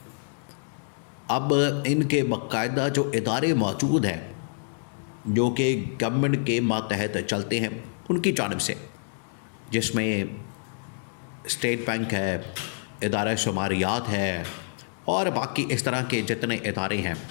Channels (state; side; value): silent; right; digital silence